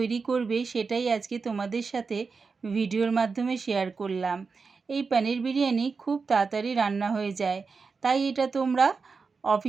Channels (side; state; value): left; quieter; 4.8 dB